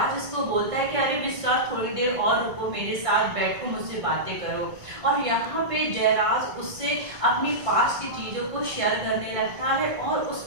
इसको बोलता है कि अरे विश्वास थोड़ी देर और रुको, मेरे साथ बैठो, मुझसे बातें करो। और यहाँ पे जयराज उससे अपनी पास्ट की चीज़ों को शेयर करने लगता है और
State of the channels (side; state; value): left; late; 1.6 ms